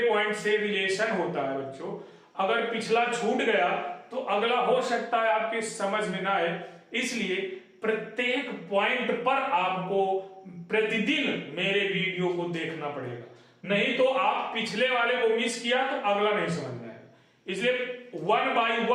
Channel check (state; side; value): identical; both; correlation 1.00